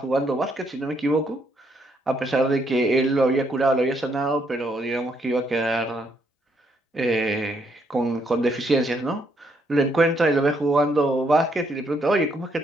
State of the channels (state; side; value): normal; both; correlation 0.73